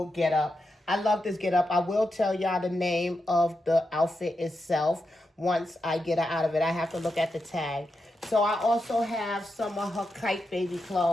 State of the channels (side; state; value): both; normal; correlation 0.87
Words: getup. I love this getup. I will tell y'all the name of the outfit itself once I get her out of it. I have to look at the tag. So I also have some of her kite baby